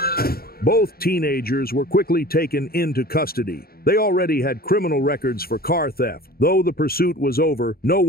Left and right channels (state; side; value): late; right; 0.44 ms